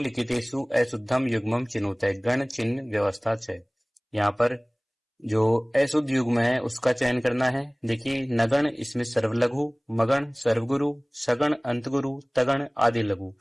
अशुद्धम युग्मम चिनुते, गण चिन्ह व्यवस्था च। यहाँ पर जो अशुद्ध युग्म है उसका चयन करना है। देखिए नगण, इसमें सर्वलघु, मगण सर्वगुरु, सगण अंतगुरु, तगण आदि लघु।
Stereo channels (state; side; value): identical; both; correlation 1.00